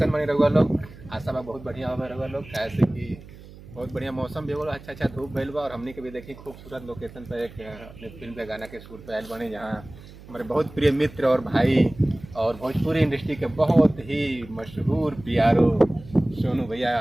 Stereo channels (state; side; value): noise; right; hum, 18 dB below the sound